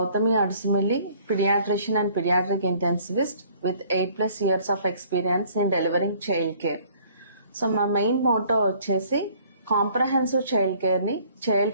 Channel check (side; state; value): both; inverted; correlation -0.57